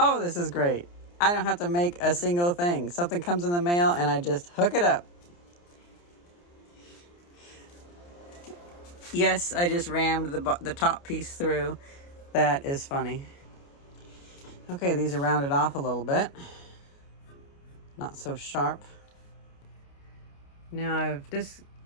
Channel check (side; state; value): right; late; 29 ms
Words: this is great. I don't have to make a single thing. Something comes in the mail and I just hook it up. Yes, I just rammed the top piece through. That is funny. Okay, these are rounded off a little bit. Not so sharp. Now I've